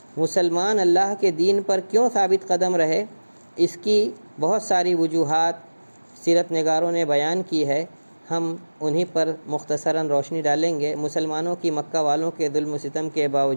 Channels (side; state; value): both; inverted; correlation -1.00